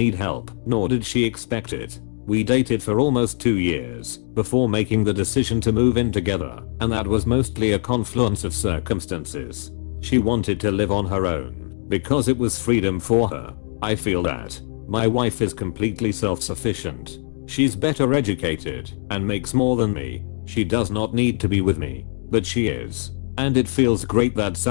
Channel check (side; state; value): right; silent; digital silence